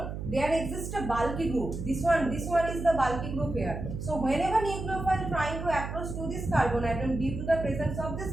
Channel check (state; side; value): noise; right; hum, 6 dB below the sound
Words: there exists a bulky group. This one is the bulky group here. So whenever nucleophile trying to approach to this carbon atom, due to the presence of